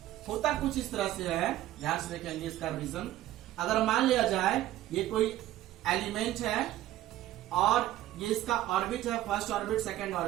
होता कुछ इस तरह से है, ध्यान से देखेंगे इसका रीजन। अगर मान लिया जाए ये कोई एलिमेंट है और ये इसका ऑर्बिट है, फर्स्ट ऑर्बिट, सेकंड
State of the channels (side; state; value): left; quieter; 14.3 dB